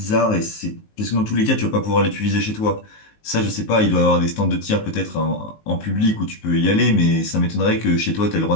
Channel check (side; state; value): right; late; 19 ms